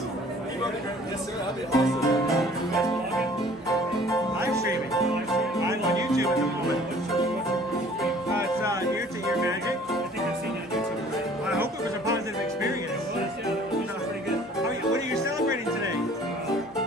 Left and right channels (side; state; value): both; normal; correlation 0.52